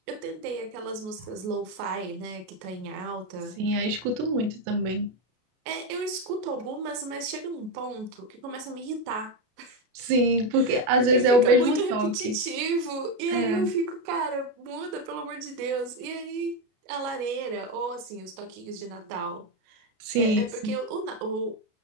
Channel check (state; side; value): late; left; 32 ms